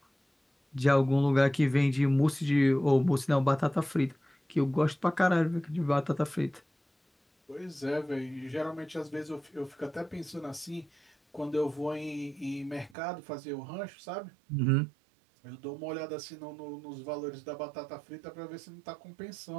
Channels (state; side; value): drops out; left; at 13.0 s